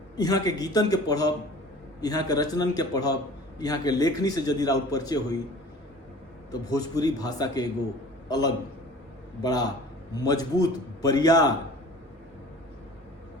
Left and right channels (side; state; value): both; normal; correlation 0.44